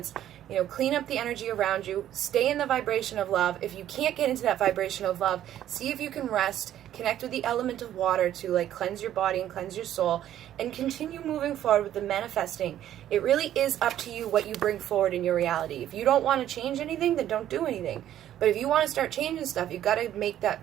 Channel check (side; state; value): left; quieter; 11.7 dB